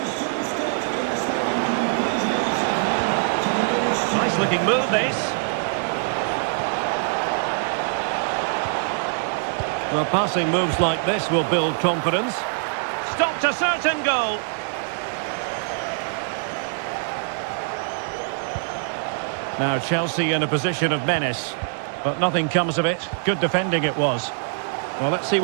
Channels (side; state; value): left; silent; digital silence